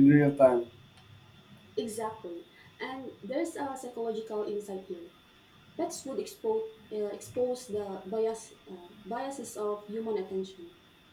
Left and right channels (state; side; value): identical; both; correlation 1.00